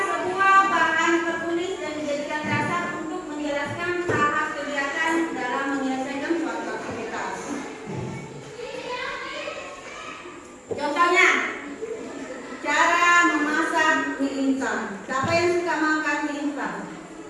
sebuah bahan tertulis yang dijadikan dasar untuk menjelaskan tahap kegiatan dalam menyelesaikan suatu aktivitas. Contohnya, cara memasak mie instan. Siapa yang suka makan mie instan?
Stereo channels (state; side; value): identical; both; correlation 1.00